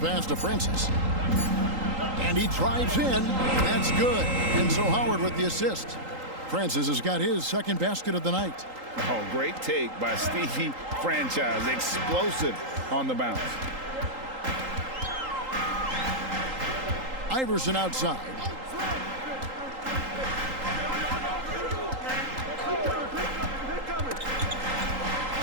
to Francis. And he drives in. That's good. And so Howard with the assist. Francis has got his second basket of the night. Oh, great take by Stevie Franchise. Explosive on the bounce. Iverson outside.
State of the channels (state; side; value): late; left; 3.8 ms